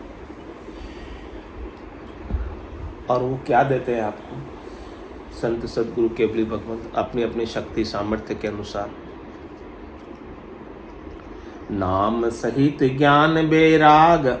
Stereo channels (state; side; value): identical; both; correlation 1.00